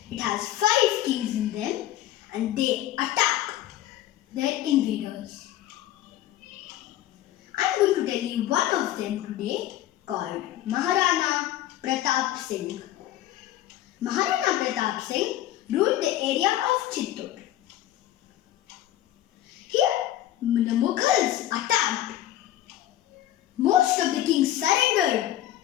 It has 5 kings in them and they attack their invaders. I'm going to tell you one of them today called Maharana Pratap Singh. Maharana Pratap Singh ruled the area of Chittor. Here, the Mughals attacked. Most of the kings surrendered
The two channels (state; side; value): quieter; right; 13.4 dB